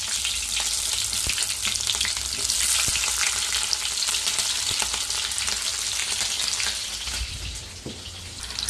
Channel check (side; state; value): both; identical; correlation 1.00